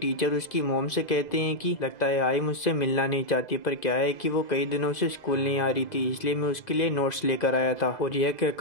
उसकी मॉम से कहते हैं कि लगता है आई मुझसे मिलना नहीं चाहती, पर क्या है कि वो कई दिनों से स्कूल नहीं आ रही थी, इसलिए मैं उसके लिए नोट्स लेकर आया था। और यह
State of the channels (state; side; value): late; right; 2.0 ms